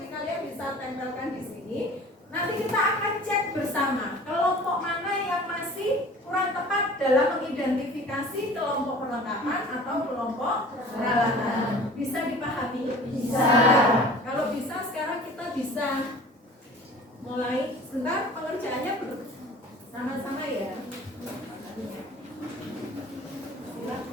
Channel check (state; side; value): normal; both; correlation 0.44